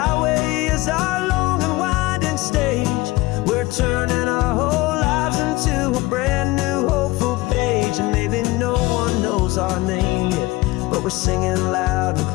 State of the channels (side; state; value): right; quieter; 20.4 dB